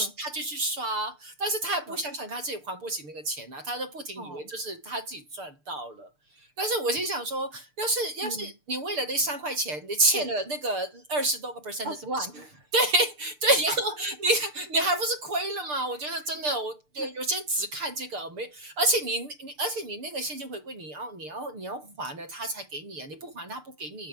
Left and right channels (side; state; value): left; late; 6.7 ms